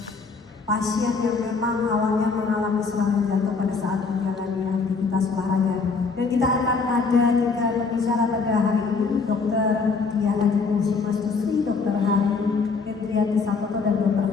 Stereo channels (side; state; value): right; quieter; 4.6 dB